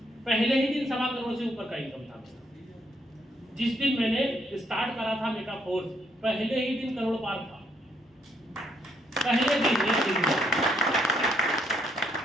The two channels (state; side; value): normal; both; correlation 0.73